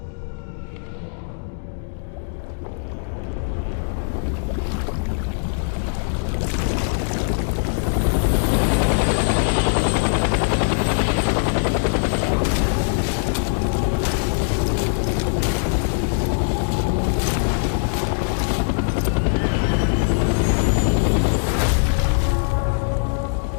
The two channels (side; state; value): right; silent; digital silence